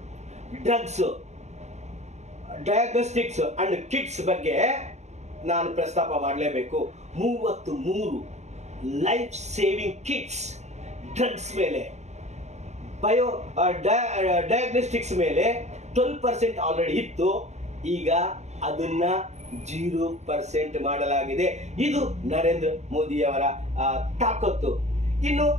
drugs, diagnostics and kits ಬಗ್ಗೆ ನಾನು ಪ್ರಸ್ತಾಪ ಮಾಡಲೇಬೇಕು. 33 ಲೈಫ್ ಸೇವಿಂಗ್ ಕಿಟ್ಸ್ ಡ್ರಗ್ಸ್ ಮೇಲೆ ಡಯಾಗ್ನೋಸ್ಟಿಕ್ಸ್ ಮೇಲೆ 12% ಆಲ್ರೆಡಿ ಇತ್ತು. ಈಗ ಅದನ್ನ 0% ಮಾಡಲಾಗಿದೆ. ಇದು ನರೇಂದ್ರ ಮೋದಿಯವರ ತಾಕತ್ತು. ಇನ್ನು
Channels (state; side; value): late; left; 0.33 ms